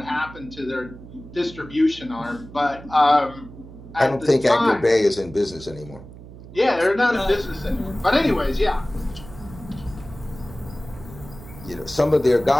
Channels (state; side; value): noise; right; hum, 17 dB below the sound